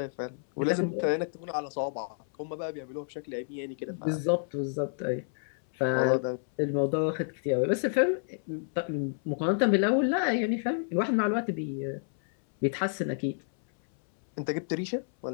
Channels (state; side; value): silent; right; 58 dB below the other